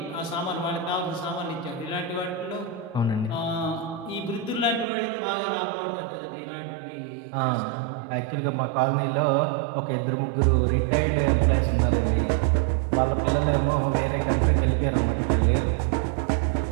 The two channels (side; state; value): left; drops out; at 4.9 s